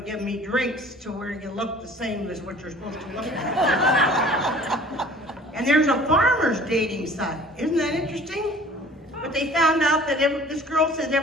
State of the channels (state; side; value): normal; both; correlation 0.49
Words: to give me drinks to where you look the same as what you're supposed to look like. And there's a farmer's dating site. Isn't that interesting? But they found out that this girl said